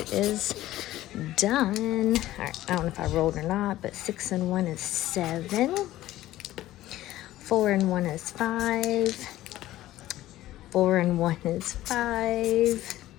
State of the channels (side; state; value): right; quieter; 15.0 dB